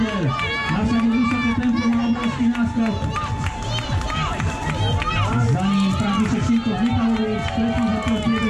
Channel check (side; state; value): both; identical; correlation 1.00